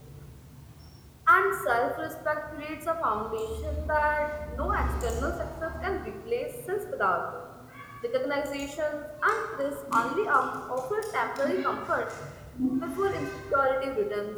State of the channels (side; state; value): both; identical; correlation 1.00